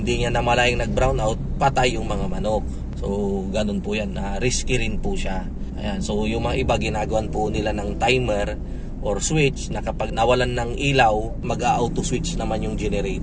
niya namalayang nag-brownout, patay yung mga manok. So ganun po yan, risky rin po siya. Ayan. So yung mga iba, ginagawan po nila ng timer or switch, na kapag nawalan ng ilaw, mag-auto switch naman yung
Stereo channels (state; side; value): identical; both; correlation 1.00